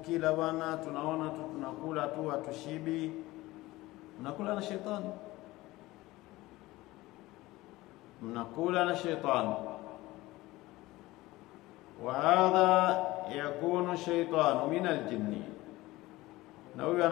bwana, tunaona tu tunakula tu, hatushibi. Mnakula na shetani. Mnakula na shetani. Wa hadha yakunu shaytanu min aljinni. Na huyu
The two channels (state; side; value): quieter; right; 18.8 dB